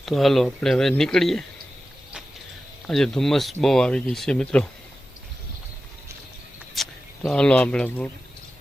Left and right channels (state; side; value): normal; both; correlation 0.93